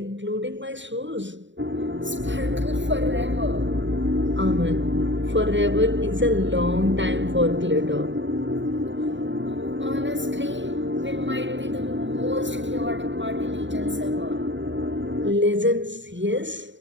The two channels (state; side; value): late; left; 0.54 ms